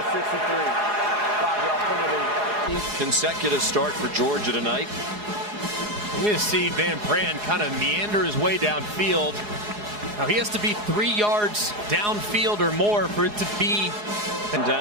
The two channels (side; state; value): left; late; 4.8 ms